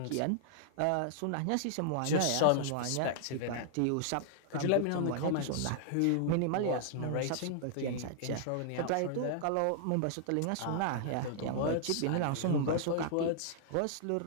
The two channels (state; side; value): different; both; correlation -0.01